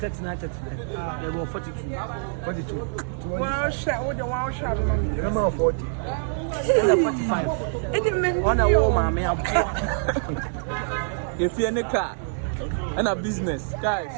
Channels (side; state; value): left; silent; digital silence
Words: They were 42. 42. Wow, shot with the wow shot. Remember 40. 45. On a woman, may If you're in a car and a business, guys.